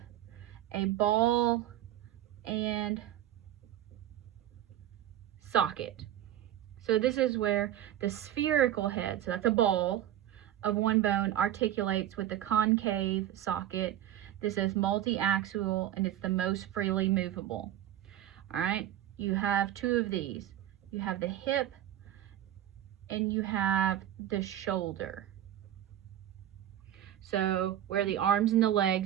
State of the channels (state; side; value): quieter; left; 11.9 dB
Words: a ball and socket. So this is where the spherical head, so that's a ball of one bone, articulates with the concave socket. This is multi-axial and it's the most freely movable. All right, you have 2 of these. You have the hip and you have the shoulder. So where the arms and the